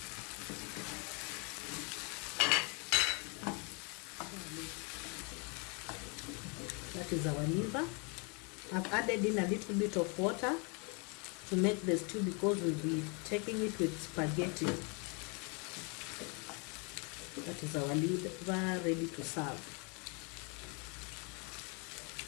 That is our liver. I've added in a little bit of water to make the stew, because we'll be taking it with spaghetti. That is our liver ready to serve.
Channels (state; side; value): quieter; right; 33.4 dB